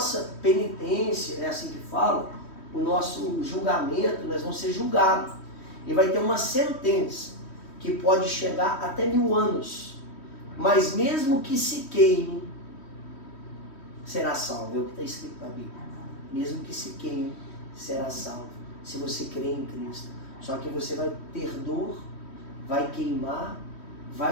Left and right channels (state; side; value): late; right; 3.1 ms